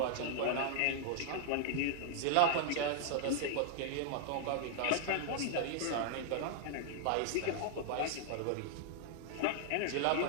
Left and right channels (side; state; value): both; different; correlation 0.00